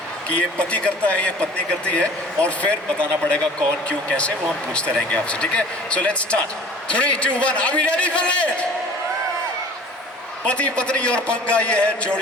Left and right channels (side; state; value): both; normal; correlation 0.47